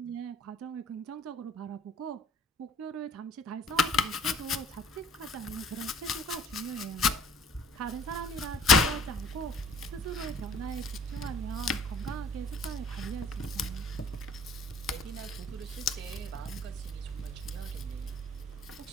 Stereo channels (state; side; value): normal; both; correlation 0.53